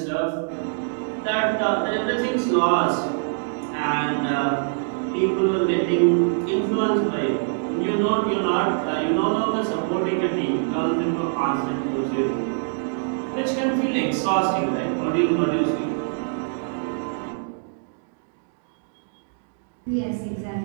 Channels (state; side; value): silent; left; digital silence